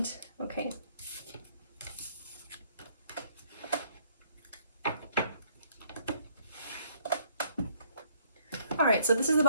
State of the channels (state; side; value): inverted; both; correlation -0.64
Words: Okay. All right, so this is the